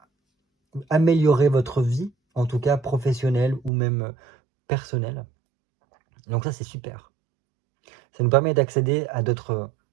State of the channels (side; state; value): left; drops out; at 3.7 s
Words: améliorer votre vie, en tout cas professionnelle ou même personnelle. Donc ça, c'est super. Ça nous permet d'accéder à d'autres